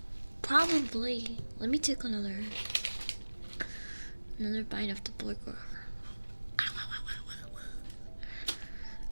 Probably. Let me take another bite of the borgar.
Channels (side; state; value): both; inverted; correlation -1.00